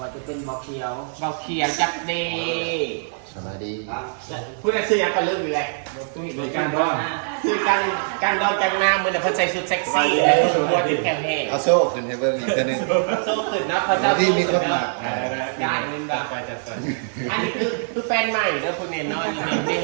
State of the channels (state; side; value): silent; left; digital silence